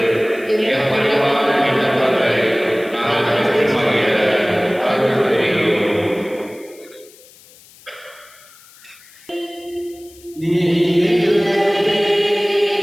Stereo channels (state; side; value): noise; left; hiss, 25 dB below the sound